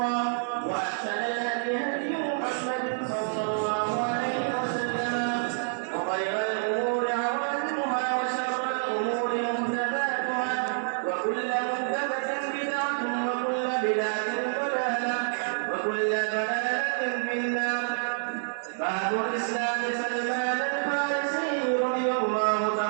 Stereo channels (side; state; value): left; silent; digital silence